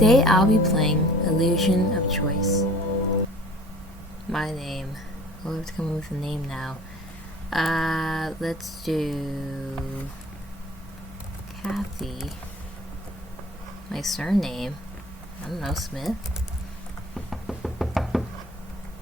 I'll be playing Illusion of Choice. My name. We'll have to come up with a name now. Let's do Kathy. My surname. I don't know, Smith.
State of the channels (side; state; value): both; normal; correlation 0.47